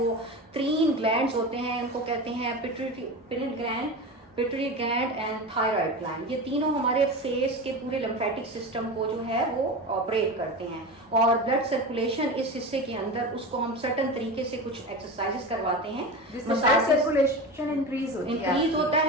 3 ग्लैंड्स होते हैं, इनको कहते हैं pituitary gland and thyroid gland. ये तीनों हमारे फेस के पूरे लिम्फेटिक सिस्टम को जो है वो ऑपरेट करते हैं, और ब्लड सर्कुलेशन इस हिस्से के अंदर, उसको हम सर्टन तरीके से कुछ एक्सरसाइजेस करवाते हैं, ब्लड सर्कुलेशन इंक्रीज होता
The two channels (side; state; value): both; normal; correlation 0.26